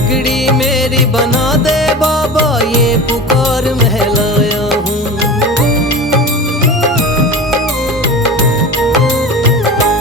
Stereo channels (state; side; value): normal; both; correlation 0.31